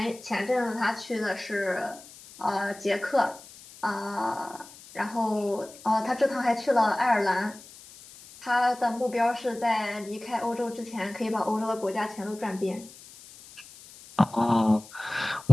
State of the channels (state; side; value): noise; left; hiss, 19 dB below the sound